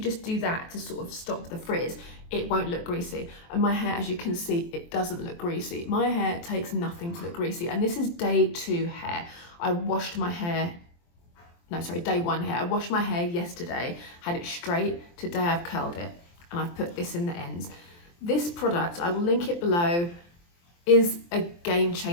just do that to sort of stop the frizz, it won't look greasy. And my hair, as you can see, it doesn't look greasy. My hair takes nothing to look greasy, and this is day 2 hair. I washed my hair, no sorry, day 1 hair. I washed my hair yesterday, had it straight. Today I've curled it and I've put this in the ends. This product, I will link it below, is a game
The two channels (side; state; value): right; late; 23 ms